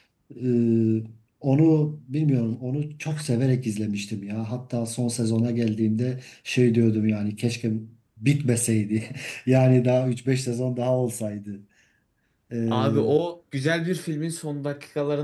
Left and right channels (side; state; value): both; identical; correlation 1.00